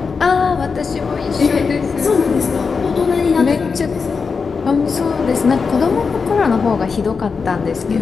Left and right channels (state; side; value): quieter; right; 5.2 dB